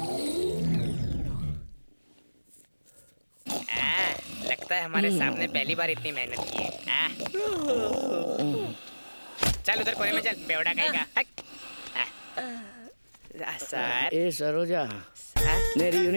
लगता है हमारे सामने पहली बार इतनी मेहनत की है। चल उधर कोने में चल, बेवड़ा कहेगा। सर। ए सरोजा, मेरी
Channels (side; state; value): both; inverted; correlation -1.00